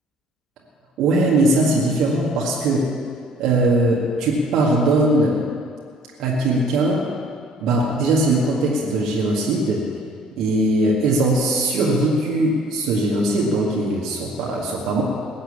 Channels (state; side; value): normal; both; correlation 0.55